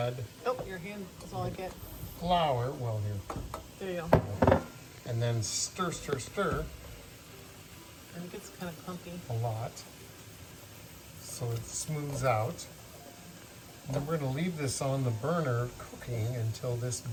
Oh, your hand is all I get. flour. Well, here. There you go. And then stir, stir, stir And it gets kind of clumpy. a lot so it smooths out. And then we're going to leave this on the burner cooking until this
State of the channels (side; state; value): both; identical; correlation 1.00